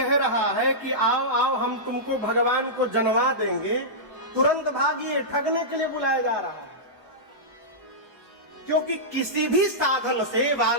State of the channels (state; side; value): normal; both; correlation -0.14